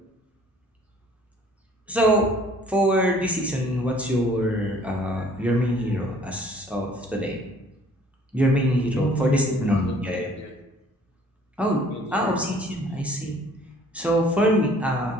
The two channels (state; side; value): normal; both; correlation 0.56